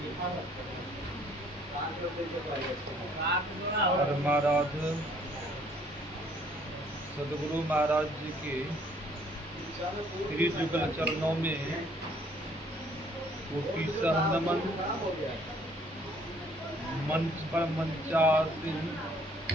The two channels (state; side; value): normal; both; correlation 0.61